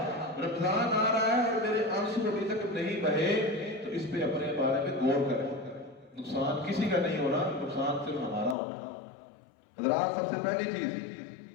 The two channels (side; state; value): right; drops out; at 8.6 s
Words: رمضان آ رہا ہے اور میرے آنسو ابھی تک نہیں بہے۔ تو اس پہ اپنے بارے میں غور کریں۔ نقصان کسی کا نہیں ہونا، نقصان صرف ہمارا ہونا۔ حضرات، سب سے پہلی چیز،